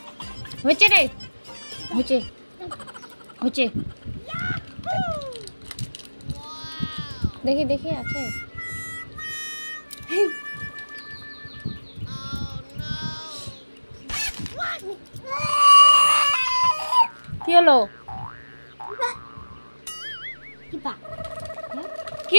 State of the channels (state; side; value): inverted; both; correlation -1.00